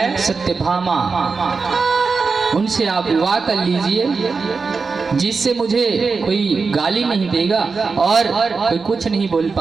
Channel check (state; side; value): quieter; left; 4.7 dB